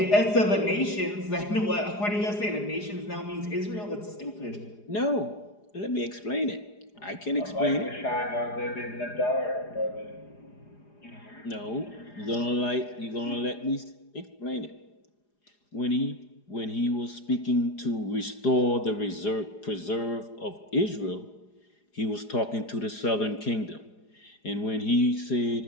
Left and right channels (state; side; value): late; right; 4.9 ms